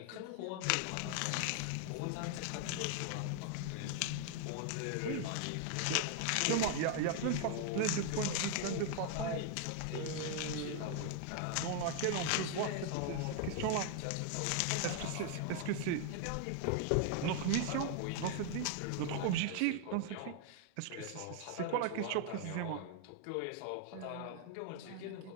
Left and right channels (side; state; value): both; different; correlation 0.00